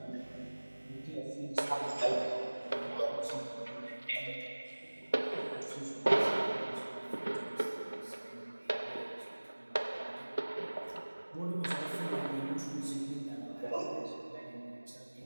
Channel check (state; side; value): inverted; both; correlation -1.00